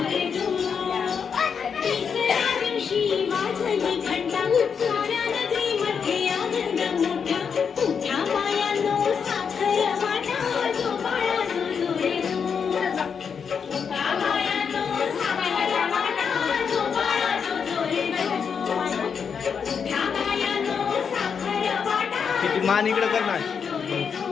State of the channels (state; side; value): quieter; right; 6.5 dB